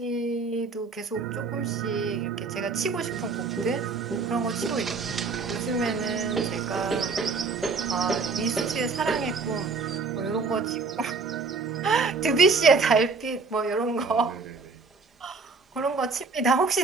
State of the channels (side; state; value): left; quieter; 4.4 dB